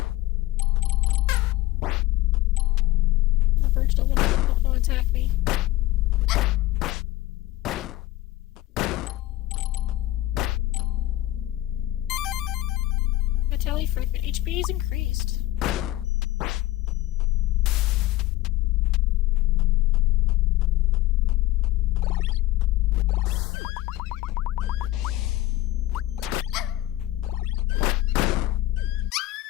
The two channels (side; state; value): right; quieter; 16.5 dB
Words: The birds don't want to attack me. Vitality fragment. HP is increased.